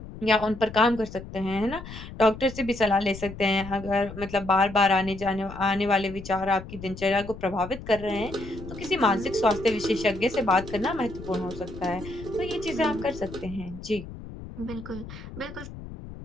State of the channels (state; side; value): noise; left; rumble, 13 dB below the sound